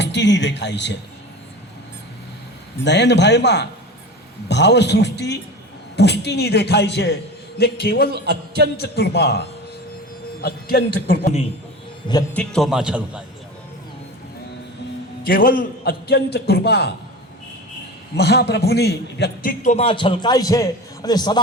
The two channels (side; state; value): both; normal; correlation 0.32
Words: દેખાય છે. નયનભાઈમાં ભાવસૃષ્ટિ પુષ્ટિની દેખાય છે ને કેવલ અત્યંત કૃપાની વ્યક્તિત્વમાં છલકાય છે. કેવલ અત્યંત કૃપા મહાપ્રભુની વ્યક્તિત્વમાં છલકાય છે અને